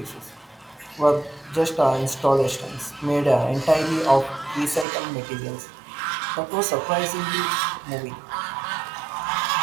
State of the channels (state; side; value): drops out; left; at 4.9 s